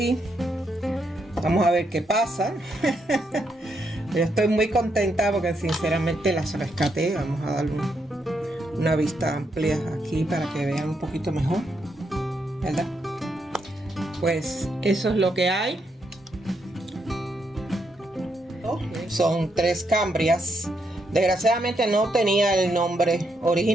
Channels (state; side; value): normal; both; correlation 0.79